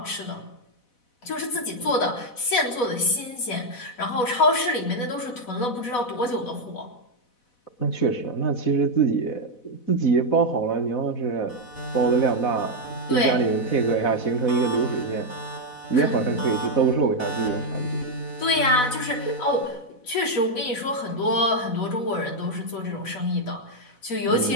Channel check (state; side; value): late; right; 4.0 ms